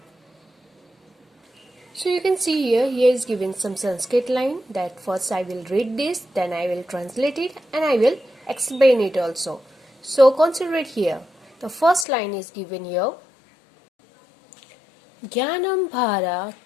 So you can see here is given some Sanskrit line that first I will read this, then I will translate it and I will explain it also. So consider it here. The first line is given here. Jnanam bhara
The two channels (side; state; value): right; drops out; at 12.1 s